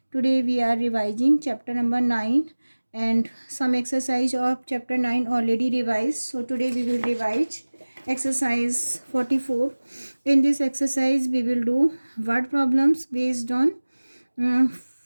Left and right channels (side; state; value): both; inverted; correlation -1.00